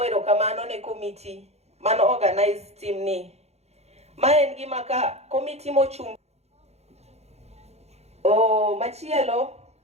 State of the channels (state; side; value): late; left; 0.31 ms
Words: erokamano ne committee mano organize team ni. Ma en gima ka committee mochung'. Machielo